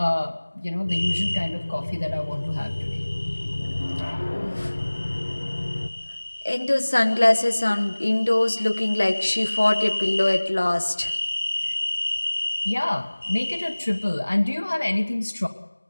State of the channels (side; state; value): both; inverted; correlation -1.00